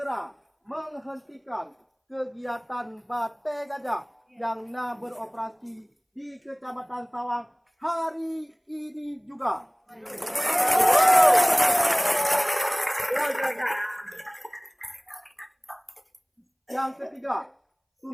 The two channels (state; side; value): identical; both; correlation 1.00